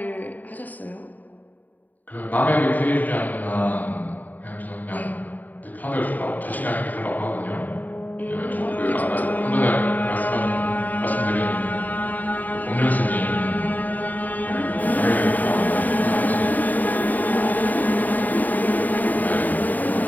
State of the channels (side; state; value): right; late; 0.082 ms